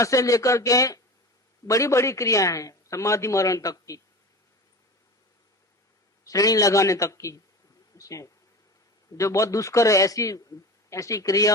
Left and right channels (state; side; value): normal; both; correlation 0.32